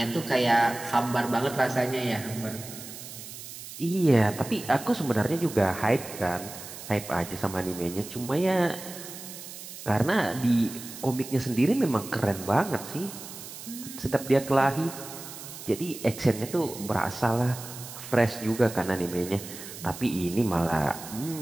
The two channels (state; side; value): noise; right; hiss, 12 dB below the sound